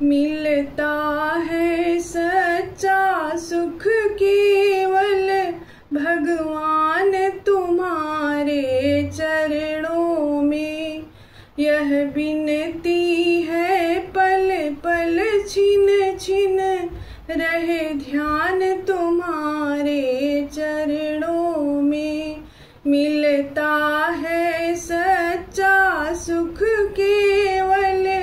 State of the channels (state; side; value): identical; both; correlation 1.00